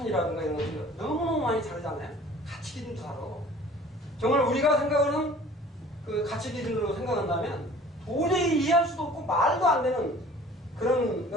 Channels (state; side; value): normal; both; correlation 0.48